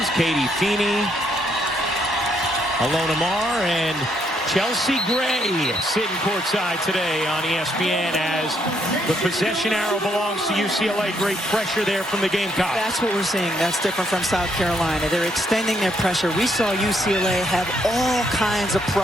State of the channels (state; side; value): normal; both; correlation 0.73